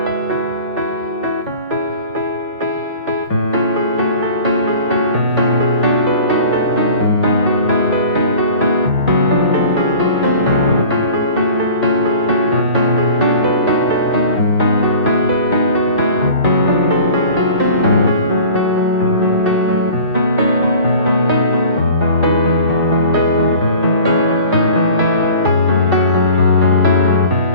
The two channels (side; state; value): both; inverted; correlation -0.43